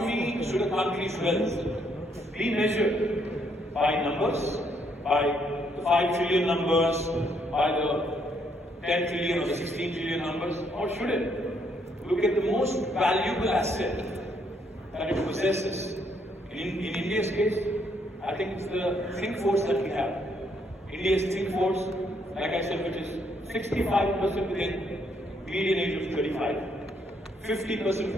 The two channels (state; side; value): normal; both; correlation 0.72